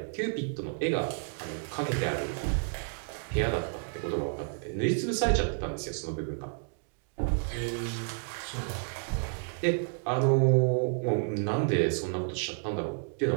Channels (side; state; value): left; silent; 57 dB below the other